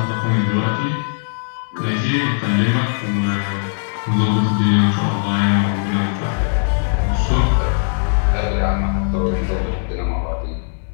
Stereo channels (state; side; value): silent; right; digital silence